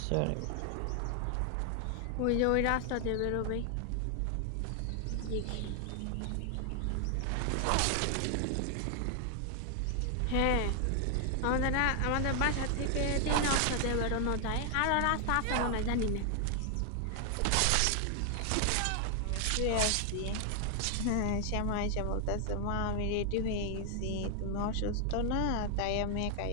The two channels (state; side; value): different; both; correlation 0.00